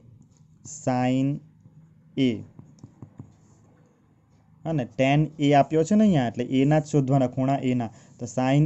sin A અને tan A આપ્યો છે ને અહીંયા, એટલે A ના જ શોધવાના, ખૂણા A ના. તો sin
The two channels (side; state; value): both; identical; correlation 1.00